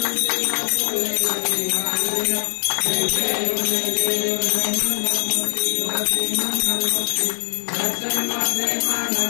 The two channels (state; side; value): silent; right; digital silence